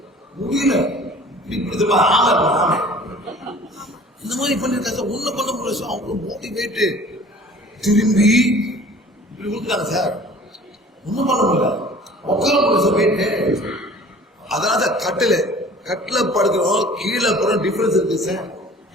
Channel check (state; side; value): normal; both; correlation 0.47